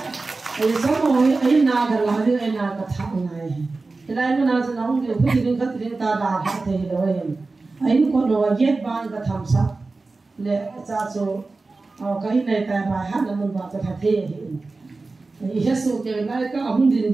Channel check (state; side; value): quieter; left; 3.6 dB